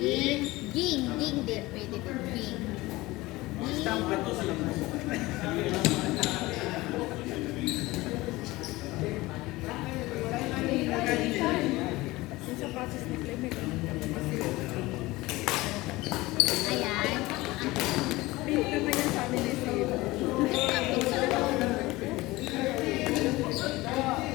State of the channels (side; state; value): right; quieter; 20.0 dB